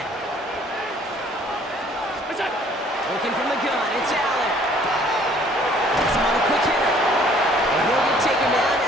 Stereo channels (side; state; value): both; normal; correlation 0.58